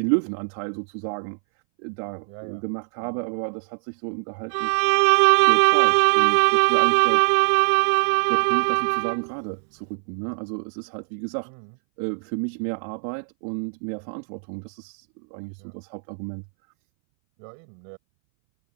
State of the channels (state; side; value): silent; left; 61 dB below the other